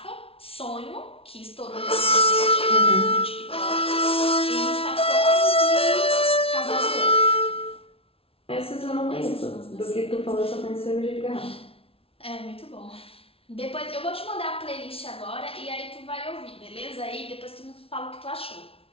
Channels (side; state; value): right; late; 0.27 ms